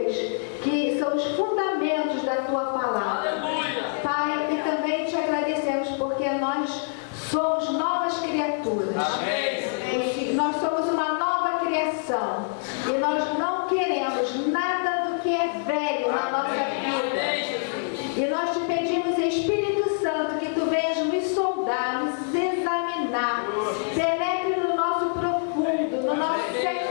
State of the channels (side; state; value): right; silent; digital silence